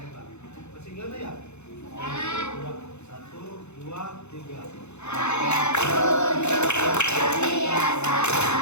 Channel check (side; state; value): right; late; 0.81 ms